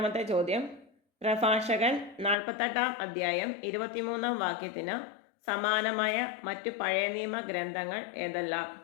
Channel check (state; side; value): drops out; right; at 2.4 s